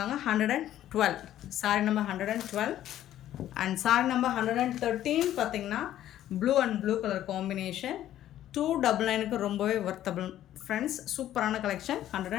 112 sari number 112. And sari number 113 பார்த்தீங்கன்னா blue and blue colour combination. 299க்கு ரொம்பவே வர்த்தபிள் ஃப்ரெண்ட்ஸ். சூப்பரான கலெக்ஷன்.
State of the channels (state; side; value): quieter; right; 12.4 dB